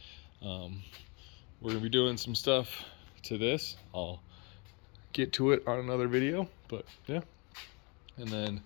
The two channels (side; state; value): right; quieter; 31.3 dB